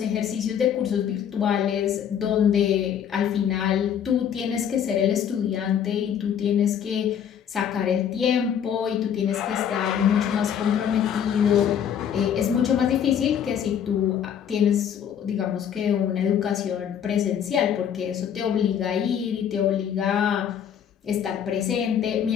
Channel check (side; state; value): right; quieter; 8.7 dB